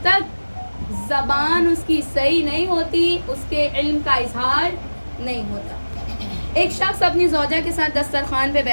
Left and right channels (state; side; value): inverted; both; correlation -1.00